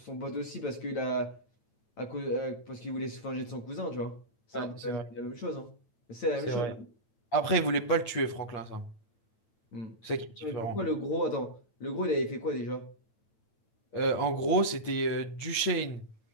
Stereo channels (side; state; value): right; late; 9.0 ms